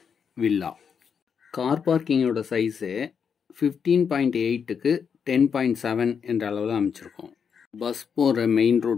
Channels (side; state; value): right; quieter; 6.7 dB